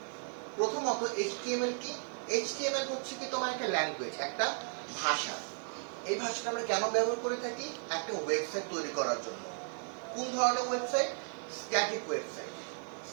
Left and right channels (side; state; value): left; silent; 54 dB below the other